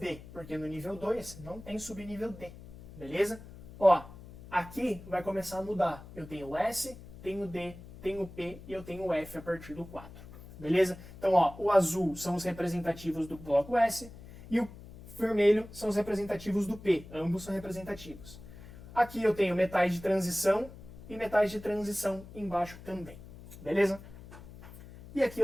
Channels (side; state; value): left; noise; hum, 16 dB below the sound